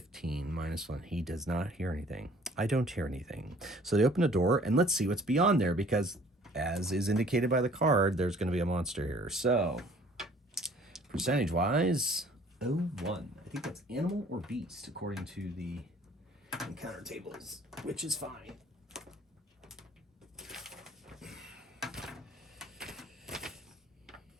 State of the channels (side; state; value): both; normal; correlation 0.54